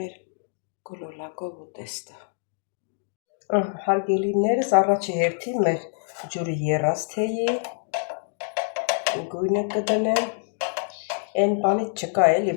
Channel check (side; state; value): right; silent; 61 dB below the other